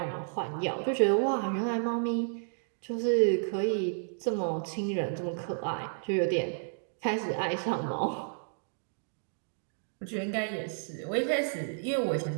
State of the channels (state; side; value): silent; left; digital silence